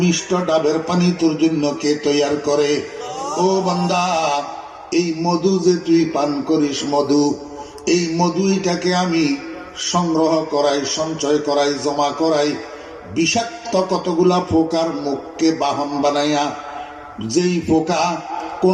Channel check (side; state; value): both; identical; correlation 1.00